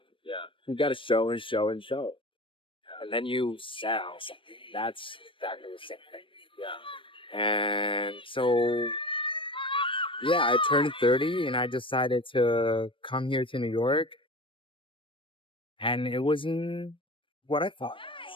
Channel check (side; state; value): right; late; 0.25 ms